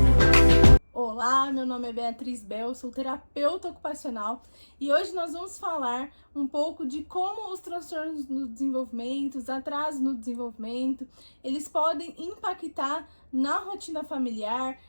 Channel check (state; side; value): inverted; both; correlation -1.00